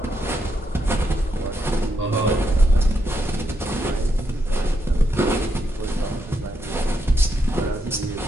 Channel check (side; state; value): both; normal; correlation 0.81